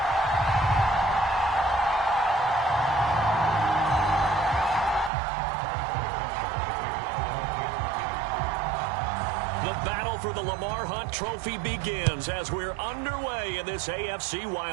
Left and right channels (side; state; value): left; drops out; at 5.1 s